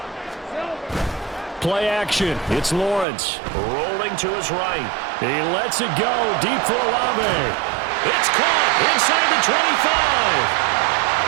play action. It's Lawrence rolling to his right. He lets it go deep for Olave. It's caught inside the 25.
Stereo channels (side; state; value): left; drops out; at 3.1 s